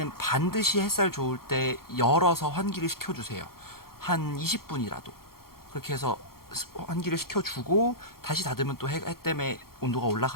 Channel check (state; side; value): late; right; 0.93 ms